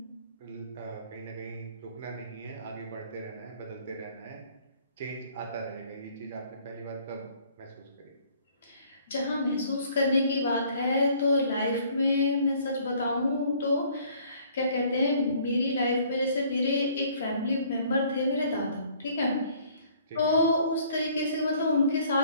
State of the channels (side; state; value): both; inverted; correlation -0.58